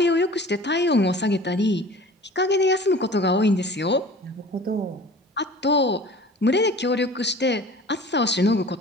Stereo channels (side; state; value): both; normal; correlation 0.43